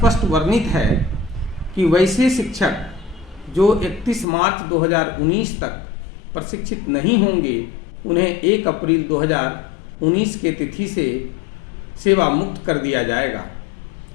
वर्णित है कि वैसे शिक्षक जो 31 मार्च 2019 तक प्रशिक्षित नहीं होंगे उन्हें 1 अप्रैल 2019 के तिथि से सेवा मुक्त कर दिया जाएगा।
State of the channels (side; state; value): right; drops out; at 4.2 s